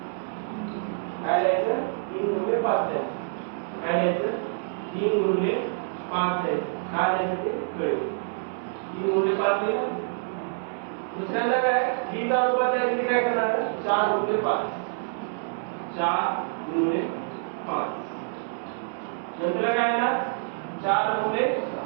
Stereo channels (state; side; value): silent; left; 60 dB below the other